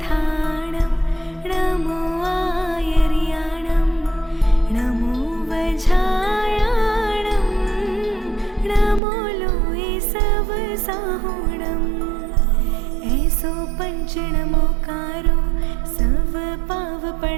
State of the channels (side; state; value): left; drops out; at 9.0 s